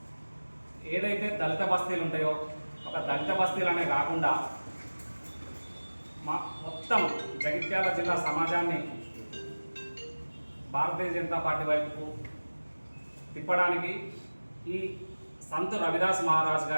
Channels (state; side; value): inverted; both; correlation -1.00